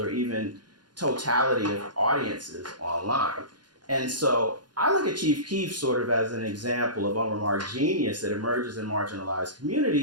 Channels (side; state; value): left; late; 0.70 ms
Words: even totality of audiences online. And so I look at Chief Keef sort of as an example of unremarked genius that emerges in marginalized